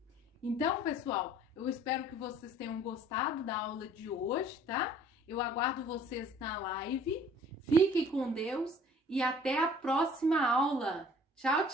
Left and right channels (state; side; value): normal; both; correlation 0.53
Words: Então, pessoal, eu espero que vocês tenham gostado da aula de hoje, tá? Eu aguardo vocês na live. Fiquem com Deus e até a próxima aula. Tchau,